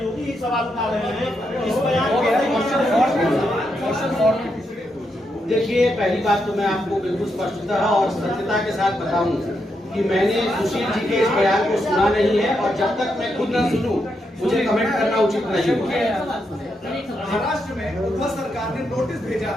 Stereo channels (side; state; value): both; normal; correlation 0.82